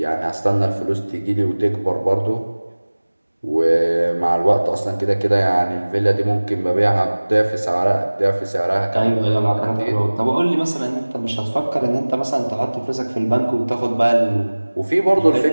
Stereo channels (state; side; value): inverted; both; correlation -1.00